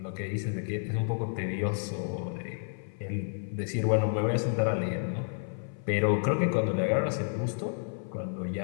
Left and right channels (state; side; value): silent; right; 57 dB below the other